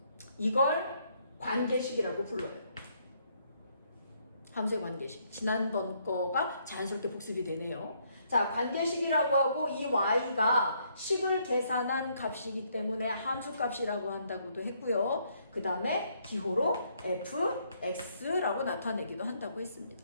이걸 관계식이라고 불러요. 함수의 관계식. 지난번 거가 자연스럽게 복습이 되네요. 자, 관계식이라고 하고 이 y가 식을 계산한 값이기 때문에 함수값이라고 한다고도 했고요. 그 다음에 기호로 fx라고 나타내기도 한다고 했습니다.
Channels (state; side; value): inverted; both; correlation -0.70